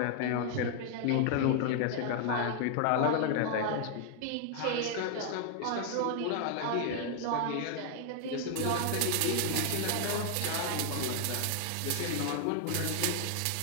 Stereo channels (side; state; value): both; different; correlation 0.00